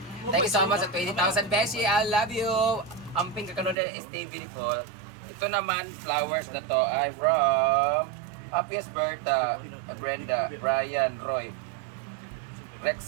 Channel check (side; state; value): left; drops out; at 3.8 s